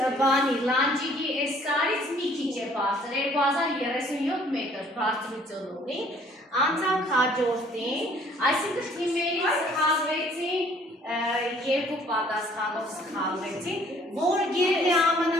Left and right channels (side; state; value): both; normal; correlation 0.58